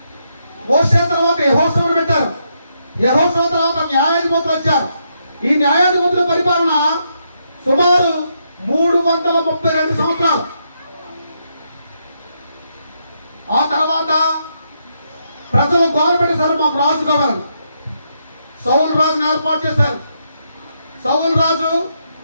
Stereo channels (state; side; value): inverted; both; correlation -0.79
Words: మోసే తర్వాత యెహోషువను పెట్టారు. యెహోషువ తర్వాత న్యాయాధిపతులు వచ్చారు. ఈ న్యాయాధిపతుల పరిపాలన సుమారు 332 సంవత్సరాలు. ఆ తర్వాత ప్రజలు గవర్నమెంట్ మాకు రాజు కావాలి. సౌలు రాజుని ఏర్పాటు చేశారు. సౌలు రాజు,